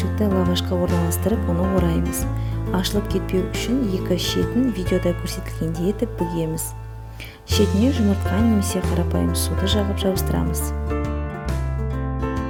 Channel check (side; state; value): both; identical; correlation 1.00